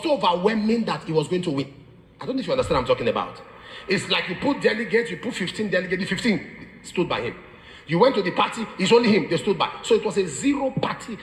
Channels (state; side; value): identical; both; correlation 1.00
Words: overwhelming that he was going to win. I don't know if you understand what I'm talking about. It's like you put delegates, you put 15 delegates, the 15 stood by him. You went to the party, it's only him, they stood by. So it was a zero party.